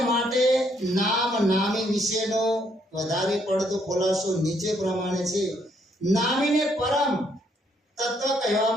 માટે નામ નામી વિશેનો વધારે પડતો ખુલાસો નીચે પ્રમાણે છે. નામીને પરમ તત્વ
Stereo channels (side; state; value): both; normal; correlation 0.71